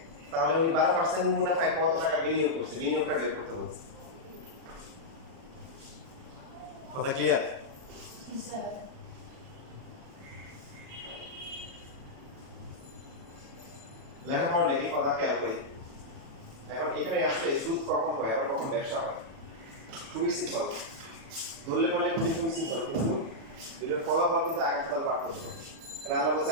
তাহলে উনি 12% মুনাফায় কত টাকা বিনিয়োগ করছে? বিনিয়োগটা বের করতে বলছে। কথা ক্লিয়ার? লেখাপড়া লেখে কথা খেয়াল করি। এখন এখানে আসলে সুদ কখন হয় আর কখন ব্যবসা হয় খুবই সিম্পল, ধরলে পারলে খুবই সিম্পল, কিন্তু এটার ফলাফল কিন্তু আগামীকাল পার্থক্য। আল্লাহ বলছে,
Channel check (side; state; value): left; late; 36 ms